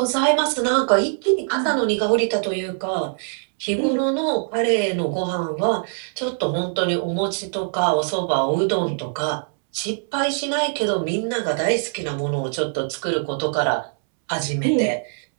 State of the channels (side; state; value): left; silent; 64 dB below the other